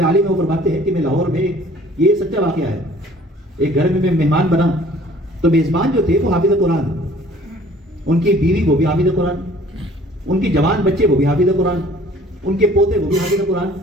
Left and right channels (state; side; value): normal; both; correlation 0.53